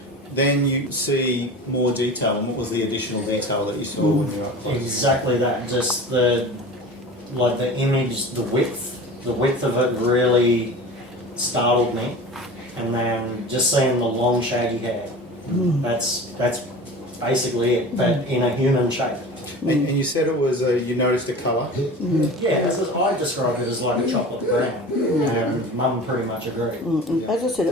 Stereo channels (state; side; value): normal; both; correlation 0.36